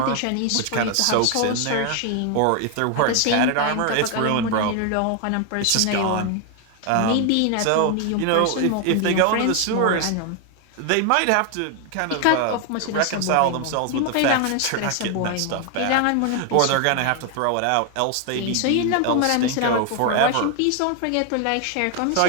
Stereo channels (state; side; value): different; both; correlation 0.01